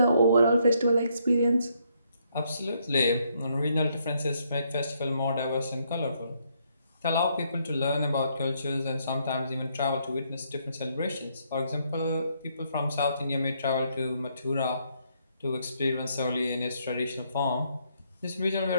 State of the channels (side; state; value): both; inverted; correlation -0.73